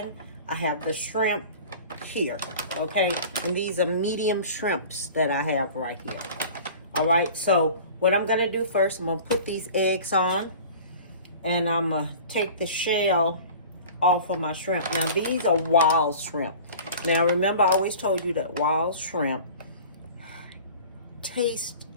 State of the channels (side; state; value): both; inverted; correlation -0.41